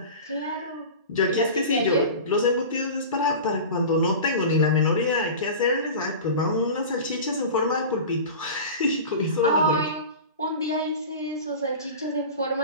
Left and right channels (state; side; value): inverted; both; correlation -0.33